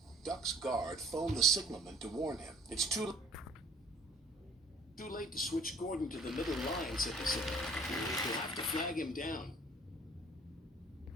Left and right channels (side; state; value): both; normal; correlation 0.51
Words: Duck's guard phoned the signalman to warn him. It's too late to switch Gordon to the middle line, said the signalman. We'll have to flag him down.